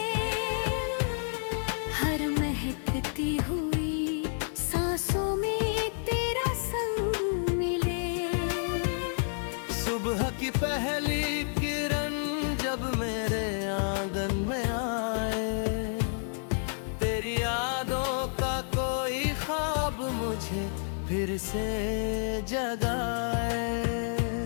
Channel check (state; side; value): silent; right; digital silence